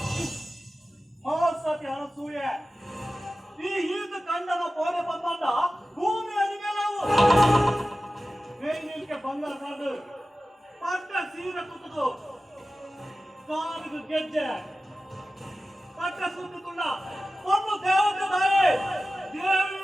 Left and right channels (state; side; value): normal; both; correlation 0.95